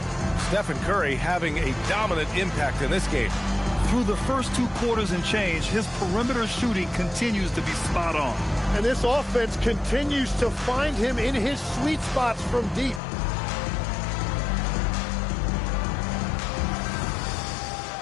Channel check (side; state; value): right; drops out; at 13.0 s